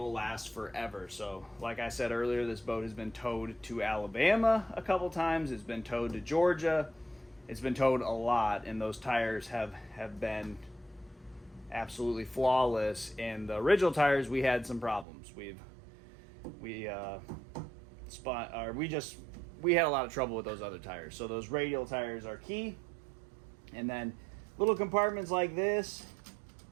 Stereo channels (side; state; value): left; drops out; at 15.1 s